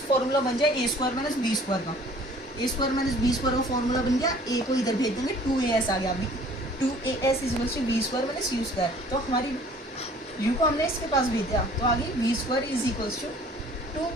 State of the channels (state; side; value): normal; both; correlation 0.52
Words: फॉर्मूला बन जाए ए स्क्वायर माइनस बी स्क्वायर का। ए स्क्वायर माइनस बी स्क्वायर का फॉर्मूला बन गया, ए को इधर भेज देंगे, 2as आ गया, अभी 2as is equal to b square minus u square, तो हमारी u को हमने इसके पास भेज दिया, तो आगे b square is equal to